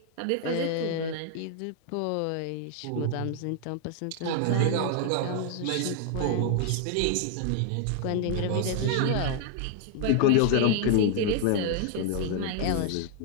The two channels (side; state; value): both; different; correlation 0.00